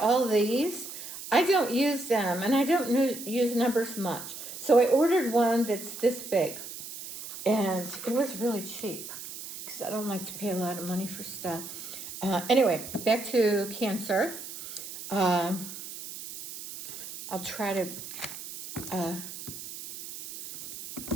all these? I don't use them, and I don't use numbers much. So I ordered one that's this big. And it was really cheap because I don't like to pay a lot of money for stuff. Anyway, back to Cancer. I'll try to,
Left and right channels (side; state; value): right; noise; hiss, 11 dB below the sound